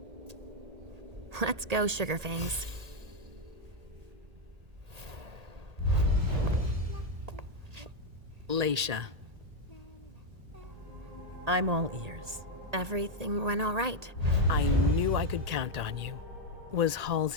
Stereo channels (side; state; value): left; late; 1.8 ms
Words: Let's go, Sugarfangs. Leisha. I'm all ears. Everything went all right. I knew I could count on you. Was